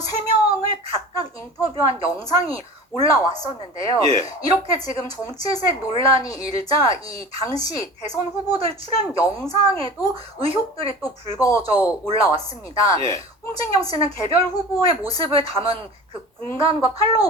각각 인터뷰한 영상이 올라왔었는데요. 예. 이렇게 지금 정치색 논란이 일자 이 당시 대선 후보들 출연 영상에도 의혹들이 또 불거져 올라왔습니다. 예. 홍진경 씨는 개별 후보의 모습을 담은 그 공간과 팔로워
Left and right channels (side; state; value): both; normal; correlation 0.37